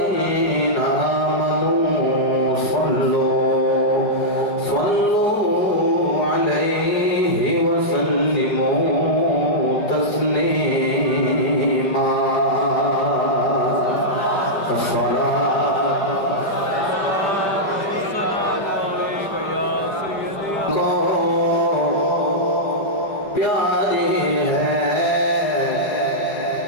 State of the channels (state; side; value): late; right; 4.8 ms